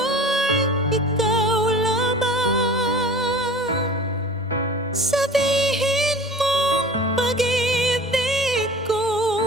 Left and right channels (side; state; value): both; normal; correlation 0.41